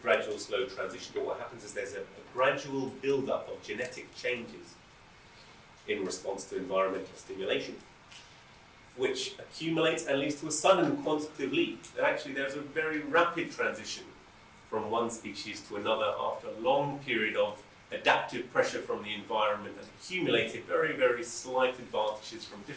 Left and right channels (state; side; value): identical; both; correlation 1.00